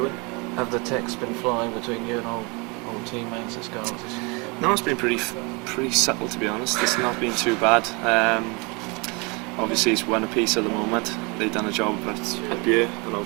win. Have the texts been flying between you and old teammates at Scarlets? No, it's been pretty subtle, to be honest. It's not been too bad. Obviously it's one apiece at the moment. They've done a job at Buer, and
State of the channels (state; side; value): quieter; left; 29.6 dB